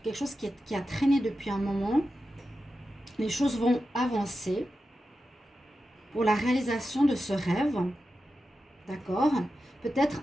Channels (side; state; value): both; normal; correlation 0.91